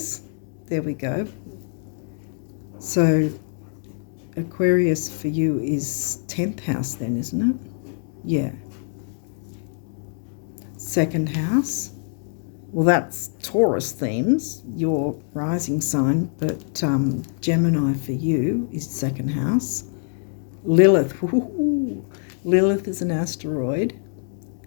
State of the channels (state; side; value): silent; right; digital silence